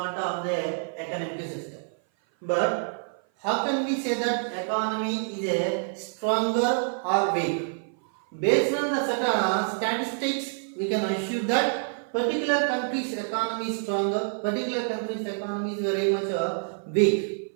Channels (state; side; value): silent; left; 56 dB below the other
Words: of the economic system. But how can we say that economy is a stronger or weak? Based on the certain statistics, we can assume that particular country's economy is stronger, particular country's economy is very much weak.